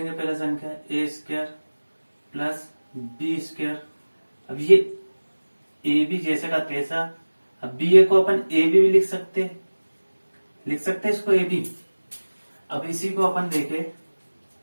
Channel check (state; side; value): inverted; both; correlation -1.00